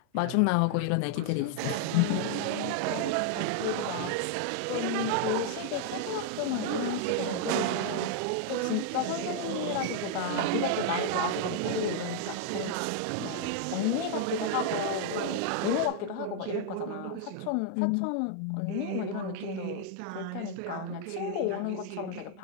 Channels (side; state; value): both; different; correlation 0.00